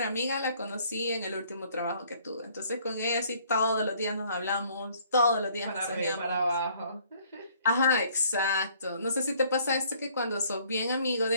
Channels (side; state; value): both; inverted; correlation -0.61